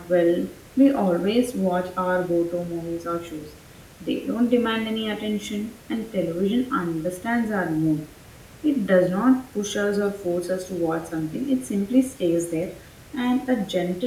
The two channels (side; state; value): both; identical; correlation 1.00